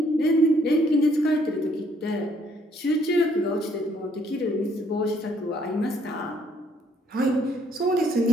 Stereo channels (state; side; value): normal; both; correlation 0.66